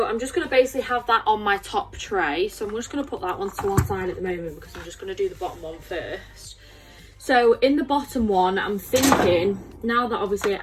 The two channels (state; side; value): identical; both; correlation 1.00